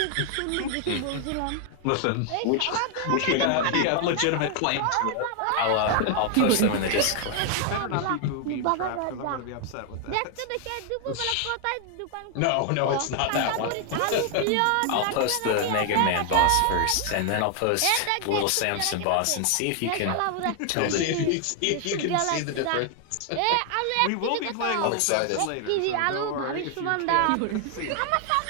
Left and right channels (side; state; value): both; different; correlation 0.00